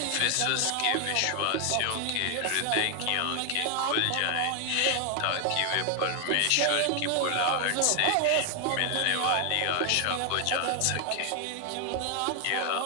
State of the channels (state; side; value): different; both; correlation 0.00